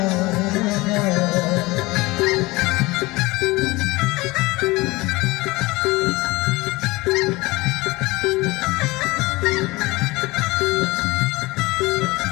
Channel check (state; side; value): quieter; right; 21.8 dB